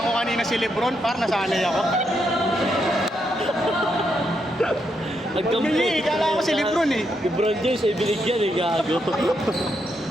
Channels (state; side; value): normal; both; correlation 0.80